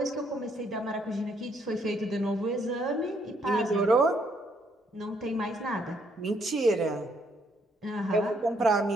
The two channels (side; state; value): both; normal; correlation 0.70